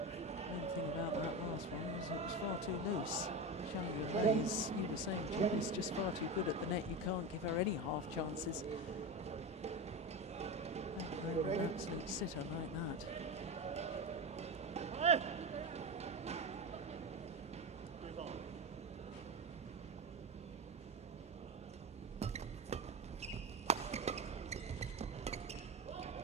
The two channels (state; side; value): normal; both; correlation 0.20